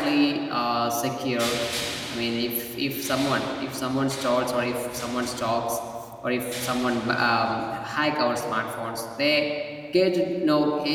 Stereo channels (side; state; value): both; identical; correlation 1.00